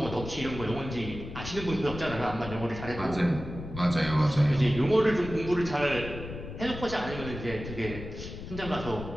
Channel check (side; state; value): left; noise; rumble, 10 dB below the sound